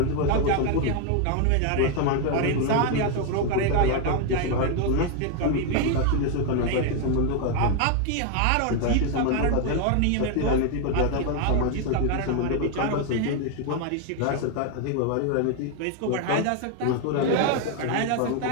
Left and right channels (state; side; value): different; both; correlation 0.01